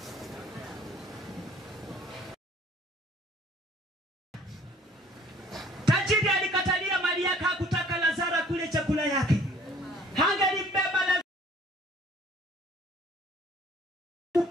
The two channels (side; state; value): both; normal; correlation 0.55